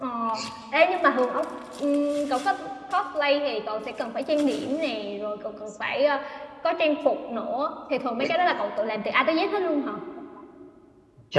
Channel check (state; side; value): identical; both; correlation 1.00